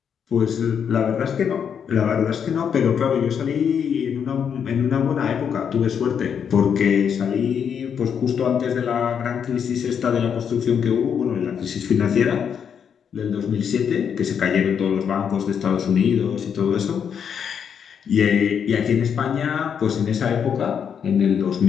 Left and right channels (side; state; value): right; quieter; 7.6 dB